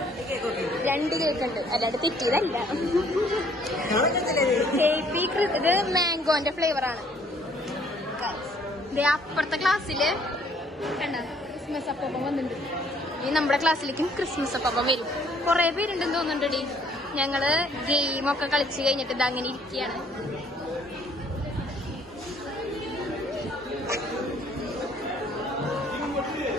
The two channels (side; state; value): both; normal; correlation 0.61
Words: 2 കേക്ക് ഉണ്ട്. അല്ലാണ്ട് തെറ്റിയതല്ല. ഇത് മാംഗോന്റെ ഫ്ലേവറാണ്. അപ്പുറത്തെ ക്ലാസ്സില് കണ്ട ക്രിസ്മസ് അപ്പം വന്നിട്ടുണ്ട്. ഈ നമ്മുടെ ക്ലാസ്സിലേക്കും ക്രിസ്മസ് അപ്പം വരും. കുറെ പേരുണ്ടെന്ന് തോന്നുന്നുണ്ടടി. ഞങ്ങള് ഗെയിമൊക്കെ കളിച്ച് കഴിഞ്ഞിട്ട് ഇത് അങ്ങനെ ഇരിക്കുകയാണ്.